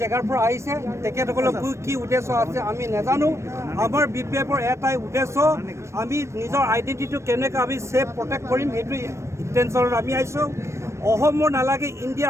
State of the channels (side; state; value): left; late; 0.13 ms